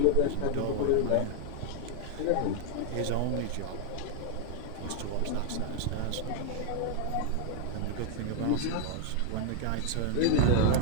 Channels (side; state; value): both; different; correlation 0.00